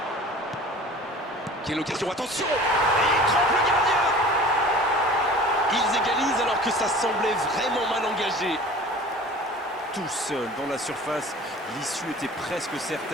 Quelle occasion, attention! Et il trompe le gardien! Ils égalisent alors que ça semblait vraiment mal engagé. Tout seul dans la surface, l'issue était presque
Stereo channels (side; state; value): both; normal; correlation 0.43